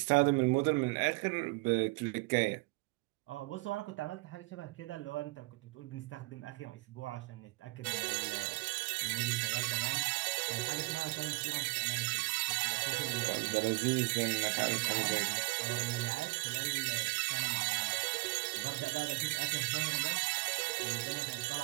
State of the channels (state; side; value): quieter; left; 24.3 dB